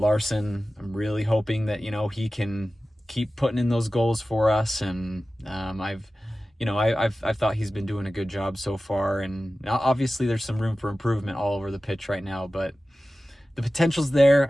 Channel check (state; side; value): normal; both; correlation 0.95